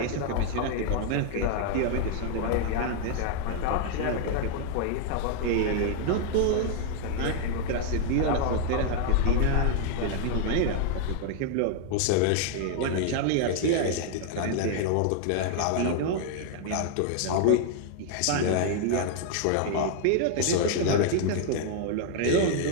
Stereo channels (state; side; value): different; both; correlation 0.00